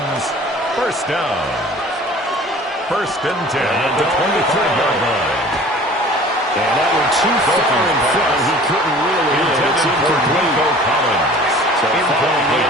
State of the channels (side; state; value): both; normal; correlation 0.46